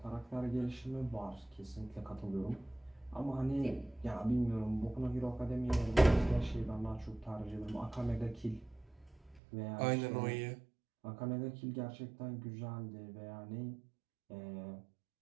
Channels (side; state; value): left; drops out; at 9.4 s